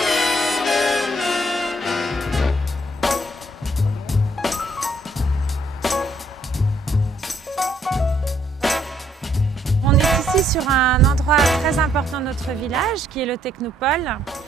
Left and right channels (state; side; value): normal; both; correlation 0.68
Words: On est ici sur un endroit très important de notre village, qui est le Technopole,